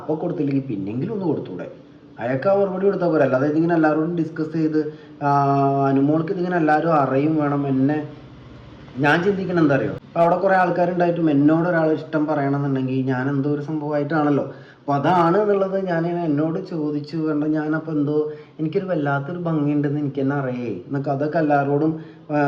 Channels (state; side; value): identical; both; correlation 1.00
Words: കൊടുത്തില്ലെങ്കിൽ പിന്നെങ്കിലും ഒന്ന് കൊടുത്തൂടെ. അയാൾക്ക് ആ മറുപടി കൊടുത്താൽ പോരെ. അല്ലാതെ ഇതിങ്ങനെ എല്ലാവരോടും ഡിസ്കസ് ചെയ്ത് അനുമോൾക്ക് ഇതിങ്ങനെ എല്ലാവരും അറിയും വേണം. ഞാൻ ചിന്തിക്കണം എന്താ അറിയോ, അപ്പോൾ അവിടെ കുറേ ആൾക്കാരുണ്ടായിട്ടും എന്നോട് ഒരാൾ ഇഷ്ടം പറയണമെന്നുണ്ടെങ്കിൽ ഞാൻ എന്തോ ഒരു സംഭവമായിട്ടാണല്ലോ. അപ്പോൾ അതാണ് എന്നുള്ളത് ഞാൻ എന്നോട് ചോദിച്ചു കണ്ട ഞാനപ്പോൾ എനിക്കൊരു വല്ലാത്തൊരു ഭംഗിയുണ്ടെന്ന് എനിക്ക് തന്നെ അറിയേ എന്നൊക്കെ അതൊക്കെ എല്ലാവരോടും